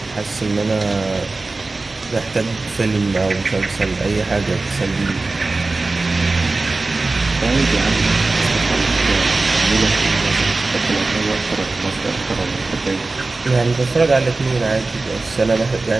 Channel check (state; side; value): quieter; left; 3.4 dB